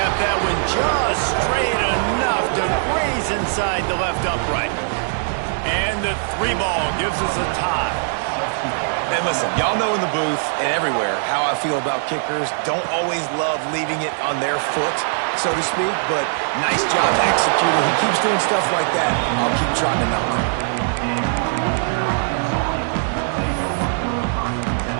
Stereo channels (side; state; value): left; silent; digital silence